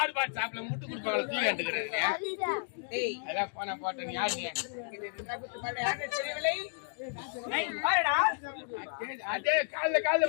சாப்பிட முட்டு கொடுப்பாங்க. தூ கண்டுக்கிறது ஏய் அதான் போன போட்டேன் யாரு நீ? இது இருந்தா குத்து பாட யாரு தெரியவில்லை பாருடா அதே கால்ல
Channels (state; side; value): silent; right; digital silence